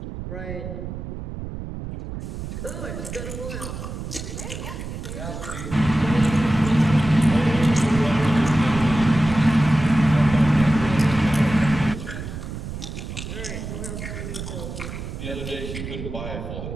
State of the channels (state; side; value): noise; right; rumble, 8 dB below the sound